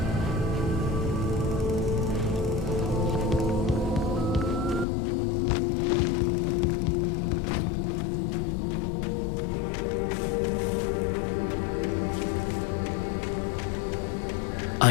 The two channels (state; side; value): drops out; right; at 4.9 s